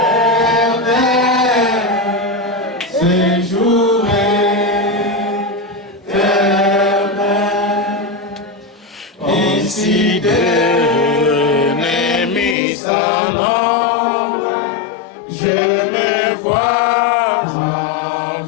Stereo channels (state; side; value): drops out; right; at 12.6 s